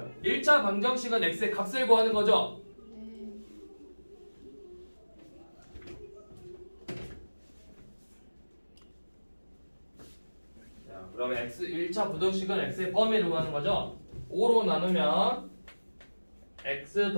1차 방정식은 x의 값을 구하는 거죠? 자, 그러면 1차 부등식은 x의 범위를 구하는 거죠? 5로 나누면 x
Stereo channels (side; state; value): both; inverted; correlation -1.00